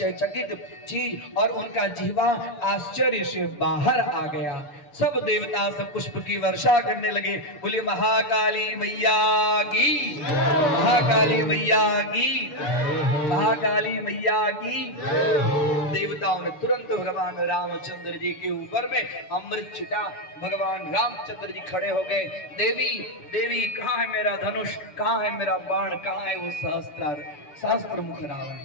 चकित चीज और उनका जिह्वा आश्चर्य से बाहर आ गया। सब देवता सब पुष्प की वर्षा करने लगे। बोले महाकाली मैया की, महाकाली मैया की, महाकाली मैया की। देवताओं ने तुरंत भगवान रामचंद्र जी के ऊपर में अमृत छिटा। भगवान रामचंद्र जी खड़े हो गए। देवी देवी कहाँ है मेरा धनुष, कहाँ है मेरा बाण, कहाँ है वो सहस्त्र मुख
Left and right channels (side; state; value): right; late; 6.9 ms